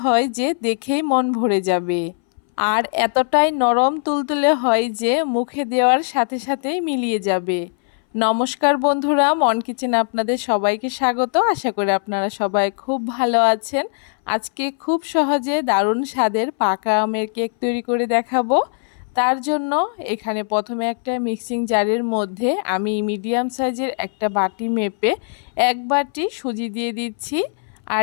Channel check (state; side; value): silent; right; 62 dB below the other